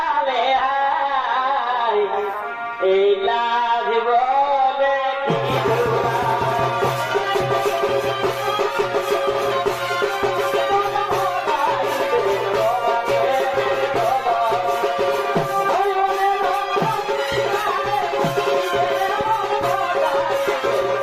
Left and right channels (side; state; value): both; identical; correlation 1.00